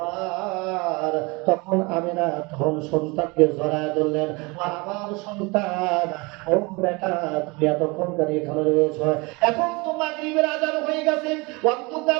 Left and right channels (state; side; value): quieter; left; 26.5 dB